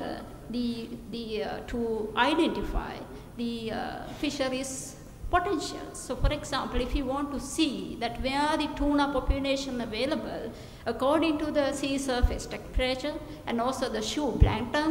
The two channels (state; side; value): identical; both; correlation 1.00